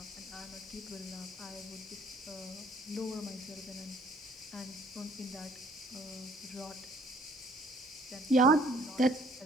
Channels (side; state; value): both; normal; correlation 0.59